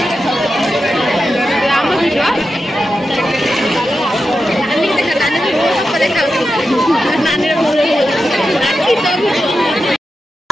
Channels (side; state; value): both; normal; correlation 0.90